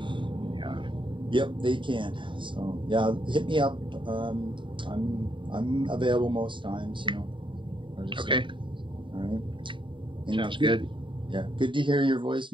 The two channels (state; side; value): late; left; 0.24 ms